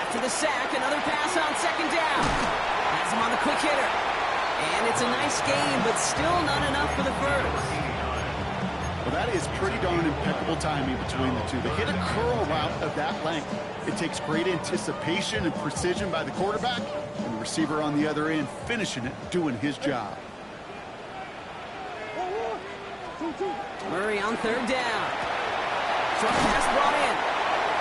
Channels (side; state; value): both; identical; correlation 1.00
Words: the sack, another pass on 2nd down. Has him on the quick hitter. And it's a nice game, but still not enough for the first. Well, that is pretty darn impeccable timing between the two. They hit a curl route of that length. It takes great anticipation and precision by the quarterback, and the receiver on the other end finishing it, doing his job. Murray on 3rd down. Short pass brought in.